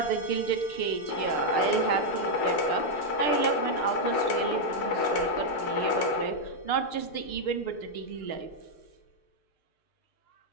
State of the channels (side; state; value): right; late; 6.6 ms